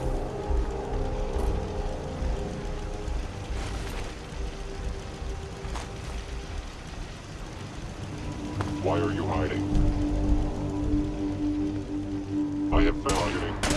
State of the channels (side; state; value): both; identical; correlation 1.00